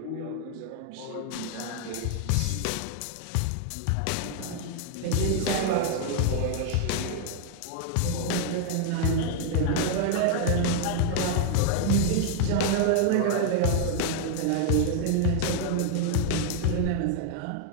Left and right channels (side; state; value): both; different; correlation 0.00